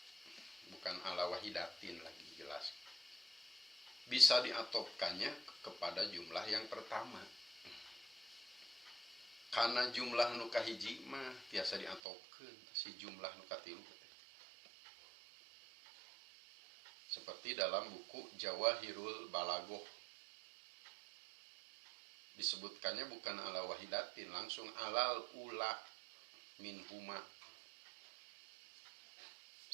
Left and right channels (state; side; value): drops out; left; at 12.0 s